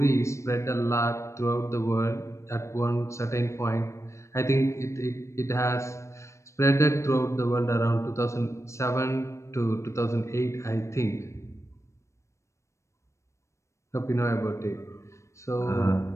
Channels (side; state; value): right; late; 0.14 ms